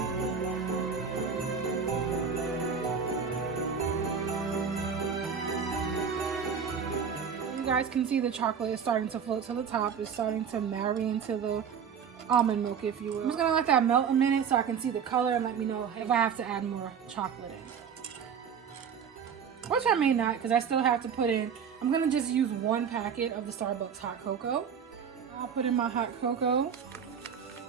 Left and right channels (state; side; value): quieter; left; 7.0 dB